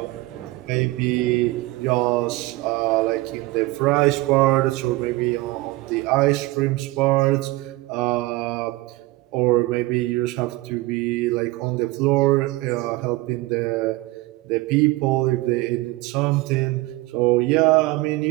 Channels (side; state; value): left; quieter; 20.2 dB